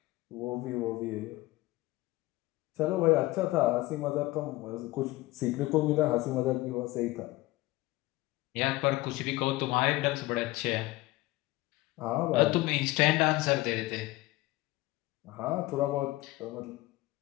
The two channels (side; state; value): right; quieter; 19.3 dB